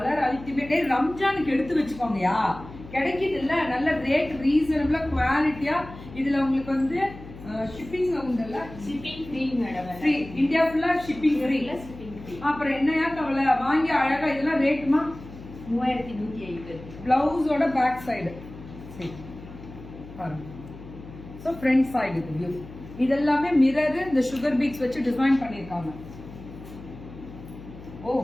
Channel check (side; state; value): left; noise; hum, 16 dB below the sound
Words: ultimate. ரம்ஜானுக்கு எடுத்து வச்சுக்கோங்கயா. கிடைக்குது இல்ல, நல்ல ரேட் ரீசனபிளா குவாலிட்டியா. இதுல உங்களுக்கு வந்து ஷிப்பிங் உண்டுல்ல? Shipping free madam. Free. India ஃபுல்லா ஷிப்பிங் ஃப்ரீ. அப்புறம் என்னையா கவலை? வாங்கி அழகா. இதெல்லாம் ரேட்டுமா? 3150. பிளவுஸோட பேக் சைடு. சரி பாருங்க. ஸோ ஃப்ரண்ட் சைடு இது வியூ. இதெல்லாமே மிரர், இந்த சுகர் பீட்ஸ் வச்சு டிசைன் பண்ணிருக்காங்க. Oh